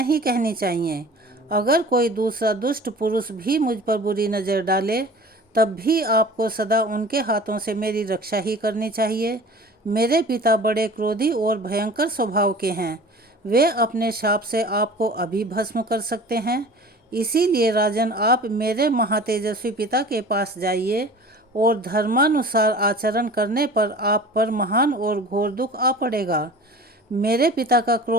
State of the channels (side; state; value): both; normal; correlation 0.42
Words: कहनी चाहिए। अगर कोई दूसरा दुष्ट पुरुष भी मुझ पर बुरी नज़र डाले, तब भी आपको सदा उनके हाथों से मेरी रक्षा ही करनी चाहिए। मेरे पिता बड़े क्रोधी और भयंकर स्वभाव के हैं। वे अपने शाप से आपको अभी भस्म कर सकते हैं। इसीलिए राजन, आप मेरे महातेजस्वी पिता के पास जाइए और धर्मानुसार आचरण करने पर आप पर महान और घोर दुख आ पड़ेगा। मेरे पिता का